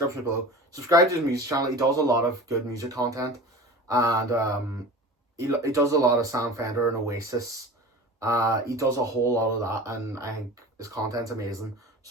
below. Subscribe to his music channel. He does a lot of good music content. And he does a lot of Sam Fender and Oasis. He does a whole lot of that, and I think his content's amazing.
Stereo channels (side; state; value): both; normal; correlation 0.36